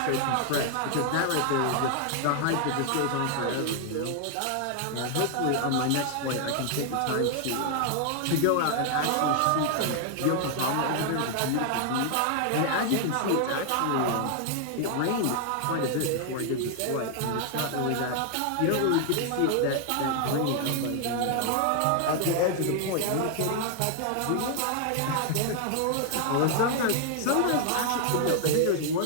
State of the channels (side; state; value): both; different; correlation 0.00